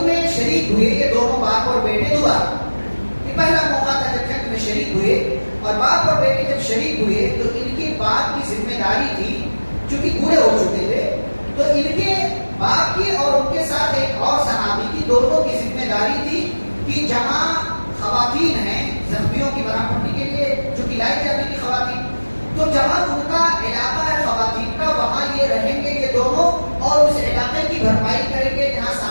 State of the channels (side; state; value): both; inverted; correlation -1.00